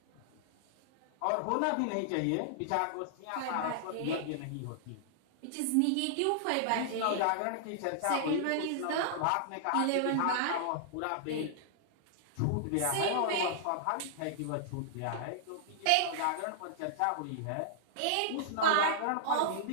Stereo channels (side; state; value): both; different; correlation -0.01